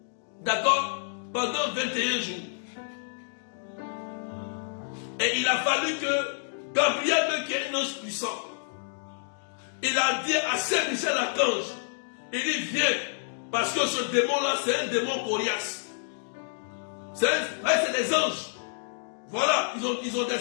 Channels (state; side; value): silent; right; digital silence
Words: D'accord? Pendant 21 jours. Et il a fallu que Gabriel, qui est un ange puissant, il a dit à Saint Michel Archange, il dit viens, parce que ce démon-là, c'est un démon coriace. C'est des anges. Voilà, ils ont des,